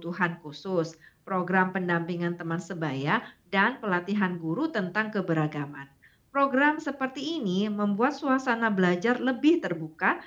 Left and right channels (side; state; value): both; identical; correlation 1.00